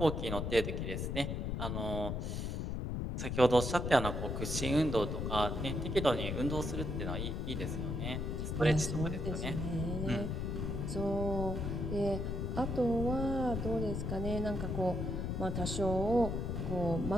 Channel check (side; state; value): left; noise; rumble, 2 dB below the sound